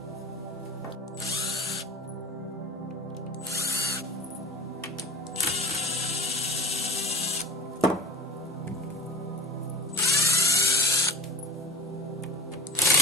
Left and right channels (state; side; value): normal; both; correlation 0.37